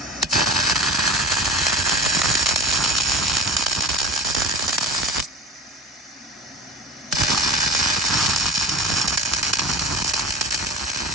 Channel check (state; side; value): normal; both; correlation 0.33